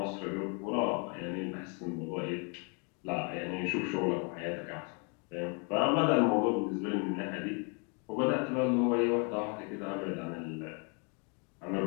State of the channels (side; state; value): right; quieter; 36.1 dB